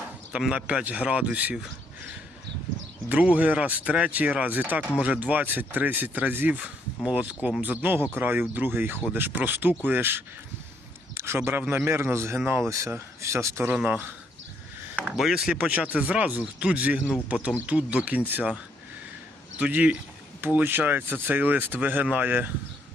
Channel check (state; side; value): normal; both; correlation 0.71